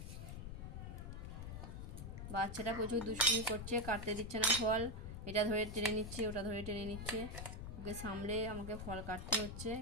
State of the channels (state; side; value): noise; left; rumble, 8 dB below the sound